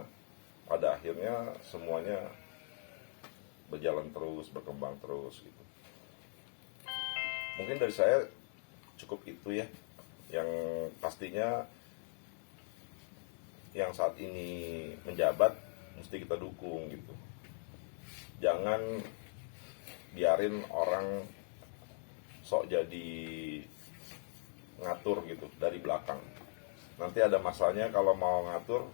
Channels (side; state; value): right; silent; 52 dB below the other